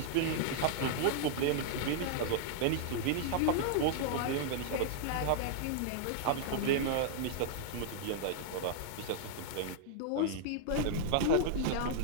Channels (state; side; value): different; both; correlation -0.01